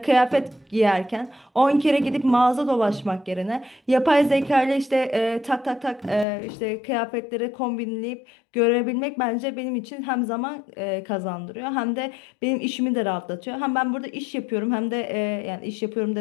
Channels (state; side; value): drops out; right; at 6.2 s